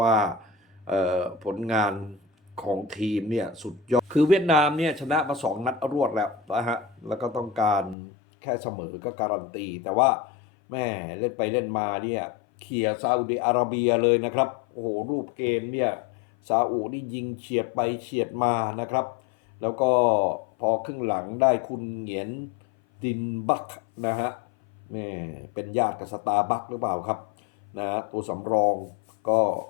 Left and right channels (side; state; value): right; drops out; at 8.0 s